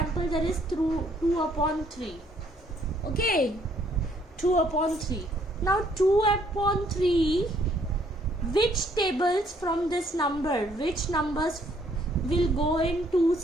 there is 2 upon 3. Okay, 2 upon 3. Now 2 upon 3, which tables from this number, which numbers will go in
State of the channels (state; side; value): normal; both; correlation 0.66